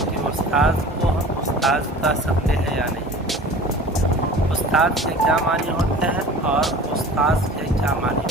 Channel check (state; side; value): normal; both; correlation 0.41